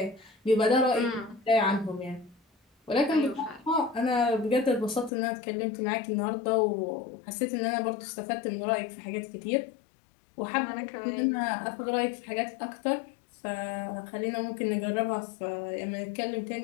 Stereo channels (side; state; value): right; drops out; at 5.1 s